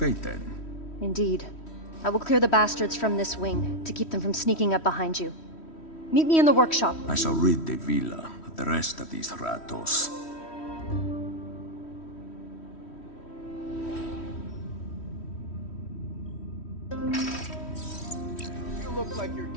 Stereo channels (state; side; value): late; right; 3.1 ms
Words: then. Indeed. I will clear the bastards from this wing, to keep them from sneaking up behind you. Meet me in the workshop. I shall rid the villa of the rest of these ratos. You look like you're